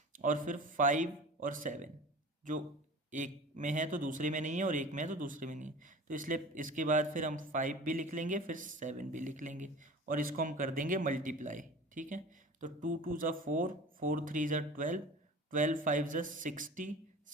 और फिर 5 और 7 जो एक में है तो दूसरे में नहीं है और एक में है तो दूसरे में नहीं है, तो इसलिए इसके बाद फिर हम 5 भी लिख लेंगे, फिर 7 भी लिख लेंगे और इसको हम कर देंगे मल्टीप्लाई, ठीक है। तो 2 2 ज़ा 4, 4 3 ज़ा 12, 12 5 ज़ा 60,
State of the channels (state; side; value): normal; both; correlation 0.38